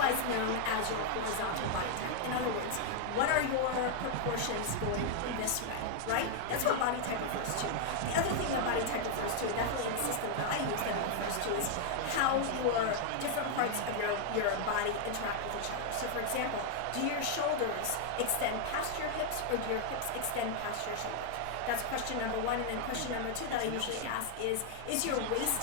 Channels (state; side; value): different; both; correlation 0.00